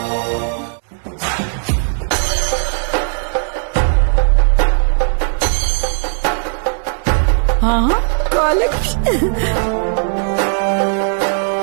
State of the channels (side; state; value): left; silent; digital silence